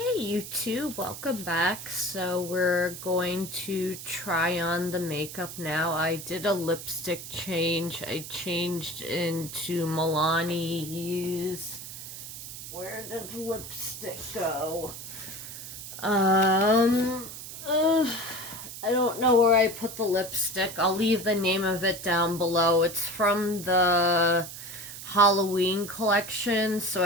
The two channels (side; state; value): right; noise; hiss, 11 dB below the sound